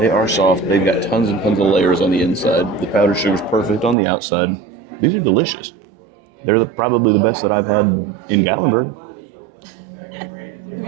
are soft. They've got tons and tons of layers on the inside. The powdered sugar's perfect on the outside. These are delicious. They're probably the best that I've had in Gatlinburg. Have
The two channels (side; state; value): left; drops out; at 4.0 s